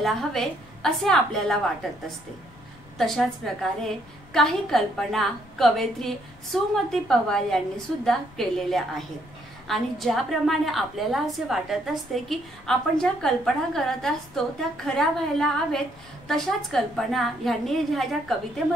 हवे असे आपल्याला वाटत असते, तशाच प्रकारे काही कल्पना कवयित्री सुमती पवार यांनी सुद्धा केलेल्या आहेत। आणि ज्याप्रमाणे आपल्याला असे वाटत असते की आपण ज्या कल्पना करत असतो त्या खऱ्या व्हायला हवेत, तशाच कल्पना यांनी ज्या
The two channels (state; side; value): noise; left; rumble, 23 dB below the sound